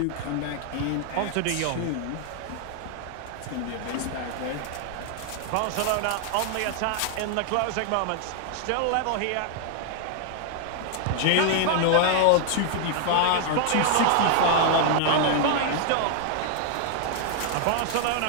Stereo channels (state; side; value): different; both; correlation 0.00